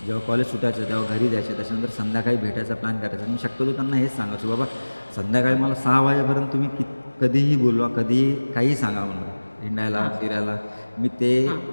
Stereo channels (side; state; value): both; inverted; correlation -1.00